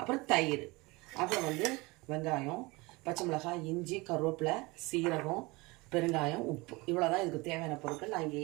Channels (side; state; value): left; quieter; 24.0 dB